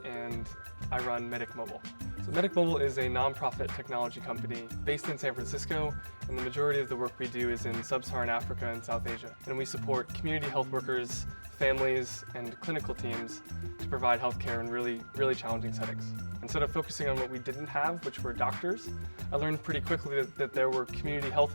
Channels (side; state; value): both; inverted; correlation -1.00